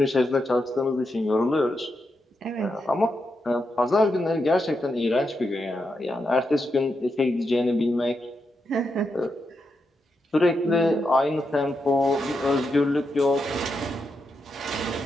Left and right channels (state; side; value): normal; both; correlation 0.84